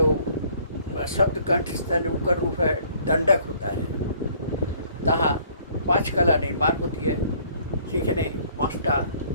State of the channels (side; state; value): both; inverted; correlation -0.59